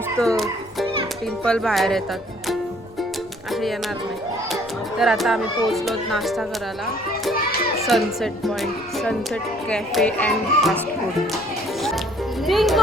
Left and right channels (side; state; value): left; noise; rumble, 26 dB below the sound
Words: पिंपल बाहेर येतात, असे येणार नाही. तर आता आम्ही पोहोचलो नाश्ता करायला sunset point, sunset cafe and fast food.